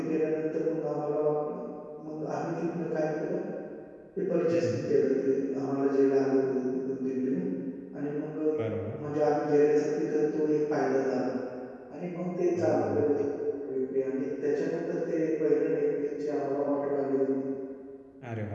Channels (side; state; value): both; identical; correlation 1.00